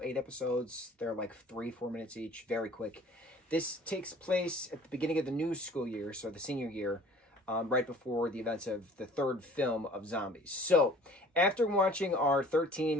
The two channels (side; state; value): both; normal; correlation 0.50